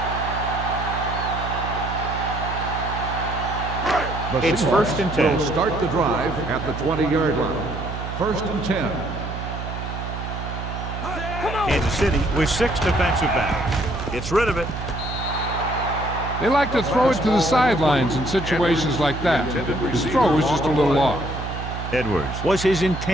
It's first and 10. Will start the drive at the 20-yard line. First and 10. Kansas City with 6 defensive backs. Gets rid of it. They like to throw it to the sidelines in situations like that. His throw was just a little off. Edwards was his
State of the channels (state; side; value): noise; right; hum, 7 dB below the sound